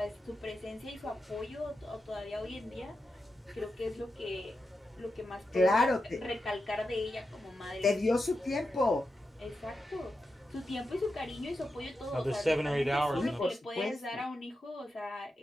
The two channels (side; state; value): both; normal; correlation 0.89